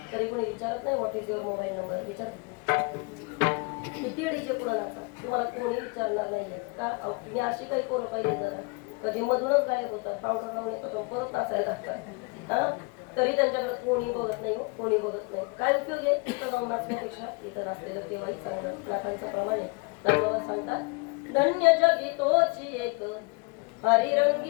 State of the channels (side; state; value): right; quieter; 30.6 dB